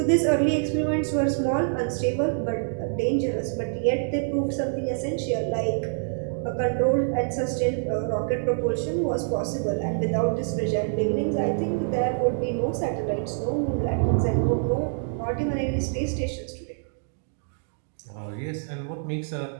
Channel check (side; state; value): left; silent; digital silence